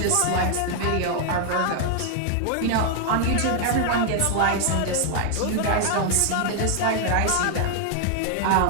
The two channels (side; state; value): both; different; correlation 0.00